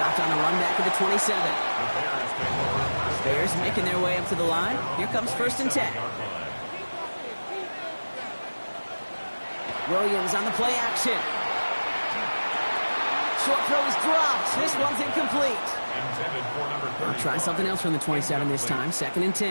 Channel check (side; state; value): both; inverted; correlation -1.00